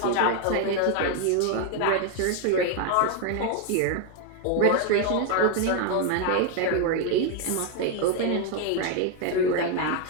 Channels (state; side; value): different; both; correlation 0.01